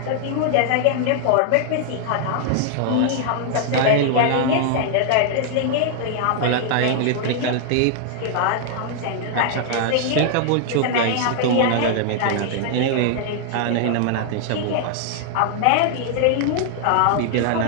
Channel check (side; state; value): both; different; correlation 0.00